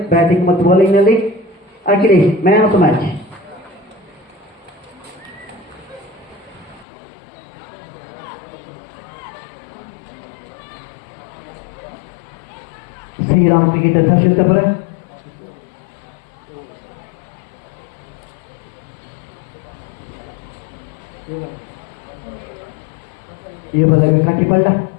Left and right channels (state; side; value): drops out; right; at 6.9 s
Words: ಬ್ಯಾಟಿಂಗ್ ಮತ್ತು ಬೌಲಿಂಗ್ ನಲ್ಲಿ Akhilesh man of the match. Shriram cricketer Harshitapura ಈ ಬದಲಿಗೆ ಕಟ್ಟಿಪಳ್ಳ